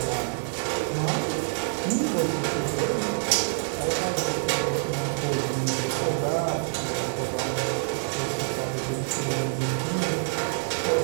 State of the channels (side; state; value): left; silent; digital silence